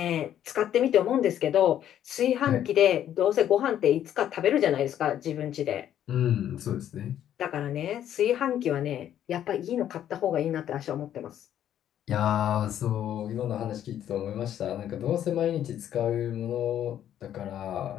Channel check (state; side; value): quieter; right; 10.7 dB